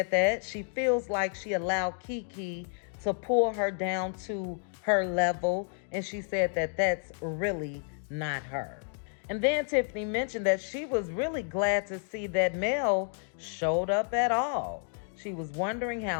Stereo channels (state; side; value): silent; right; 57 dB below the other